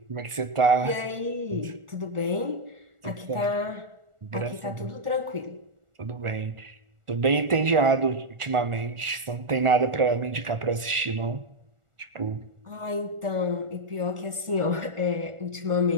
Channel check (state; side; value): late; left; 1.4 ms